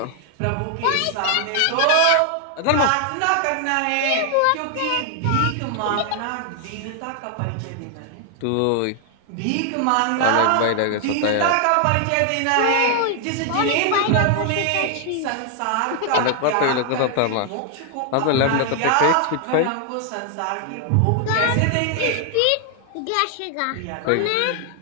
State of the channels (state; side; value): different; both; correlation 0.00